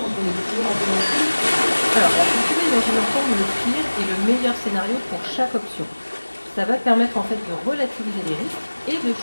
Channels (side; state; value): both; inverted; correlation -1.00